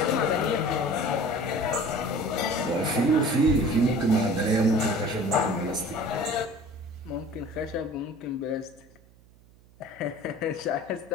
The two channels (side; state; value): right; noise; hum, 27 dB below the sound